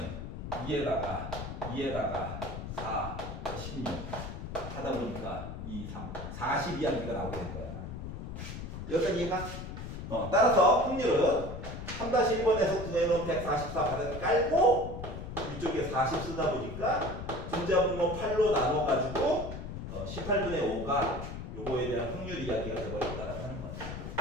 2에다가 4, 16 하다 보니까 2, 3, 40 이야기가 나오게 된 거야. 여기까지 이해가? 따라서 확률은 3-1번에서 구해놓은 144 바닥에 깔고 이쪽에 40 쓰다 보니까 분자분모 8로 나눠가지고 18분의 5가 요거에 대한 확률 이야기가 되어버렸다라고 하는 거야.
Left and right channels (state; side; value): noise; left; rumble, 8 dB below the sound